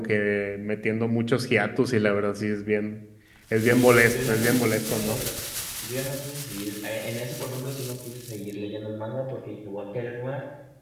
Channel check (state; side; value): identical; both; correlation 1.00